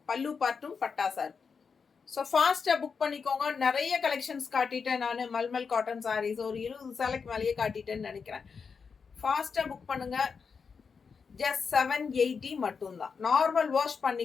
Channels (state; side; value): quieter; right; 5.6 dB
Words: பல்லு பார்ட்டும் பட்டாசா இருக்கு. ஸோ ஃபாஸ்ட்டாக புக் பண்ணிக்கோங்க. நிறைய கலெக்ஷன்ஸ் காட்டிட்டேன் நான். மல்மல் காட்டன் சாரீஸ் ஒரு 20 சேலைக்கு மேலேயே காட்டிட்டேன்னு நினைக்கிறேன். ஃபாஸ்ட்டாக புக் பண்ணுங்க. ஜஸ்ட் 780 மட்டும்தான். நார்மல் வாஷ்